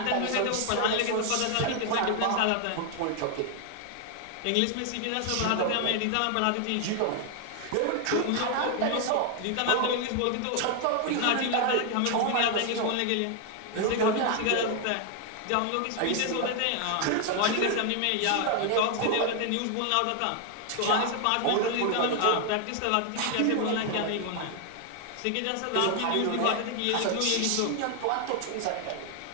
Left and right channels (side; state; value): both; different; correlation 0.00